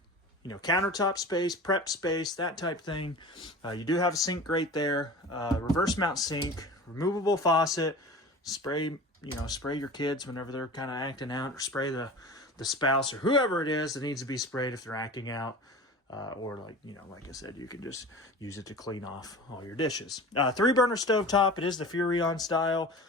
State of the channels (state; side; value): normal; both; correlation 0.36